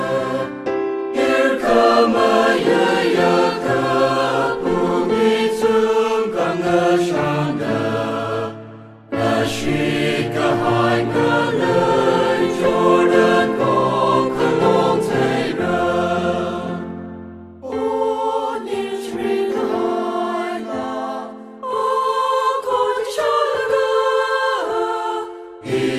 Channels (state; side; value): identical; both; correlation 1.00